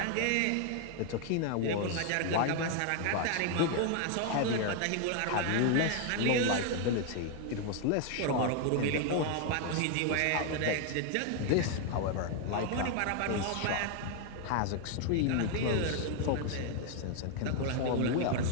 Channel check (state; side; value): different; both; correlation 0.00